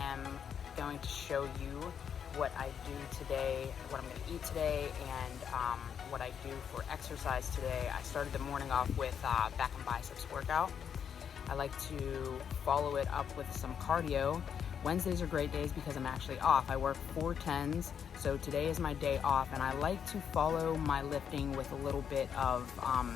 going to show you what I do today, what I'm going to eat today, and what I do for exercise today. I started the morning off with back and biceps workout. I like to follow it up with some cardio. Wednesdays are great days because I'm actually off. I work 4/10s, so today is my day off, and I like to follow my lifting with a little bit of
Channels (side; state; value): right; quieter; 7.8 dB